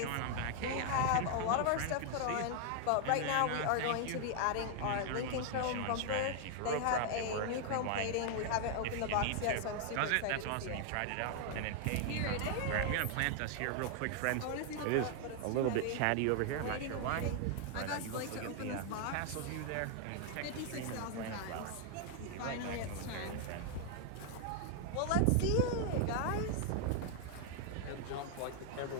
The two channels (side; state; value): both; different; correlation 0.00